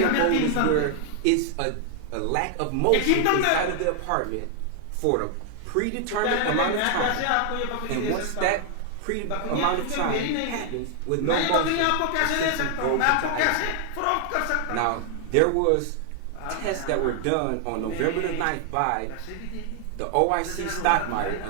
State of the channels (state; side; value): different; both; correlation 0.00